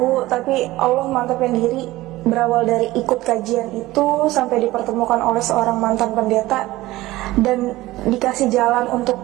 tapi Allah mantapin diri. Berawal dari ikut kajian itu sampai dipertemukan oleh seorang mantan pendeta dan dikasih jalan untuk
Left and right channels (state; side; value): quieter; left; 17.7 dB